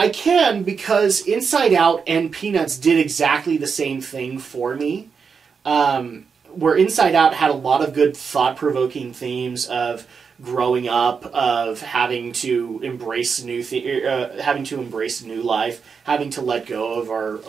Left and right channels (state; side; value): quieter; left; 5.8 dB